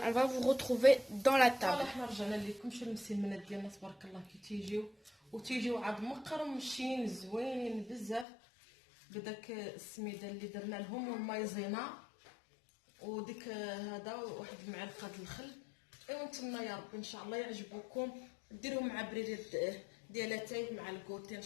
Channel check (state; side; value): drops out; right; at 8.2 s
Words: on va vous retrouver dans la table. صراحه حنا رجعنا لكم شي المسمنات ديالنا تبارك الله كي تيجيو عاد مقرمشين زوينين بزاف بداك السميده اللي درنا لهم والمايزينا وديك هذا واحد المعلقه د الخل. ايوا نتمنى يا ربي ان شاء الله يعجبوكم ديروه مع بريد ديالاتاي مع الكوتي ان